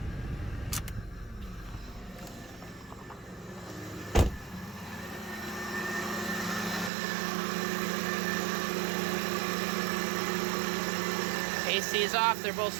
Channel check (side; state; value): left; drops out; at 6.9 s